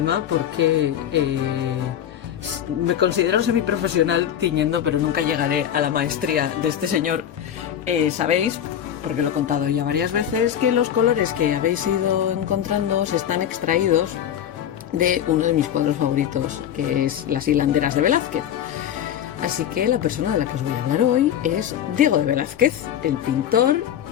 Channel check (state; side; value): quieter; right; 10.0 dB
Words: porque me considero semiprofesional tiñendo, pero nunca llegaré a la maestría de este señor. Sabéis, porque lo he contado ya varias veces, que los colores que habéis ido encontrando se están extraídos de uno de mis cuadros favoritos, que es Las hilanderas de Velázquez. Así que la persona de la que os voy a hablar hoy es Diego de Velázquez, el pintor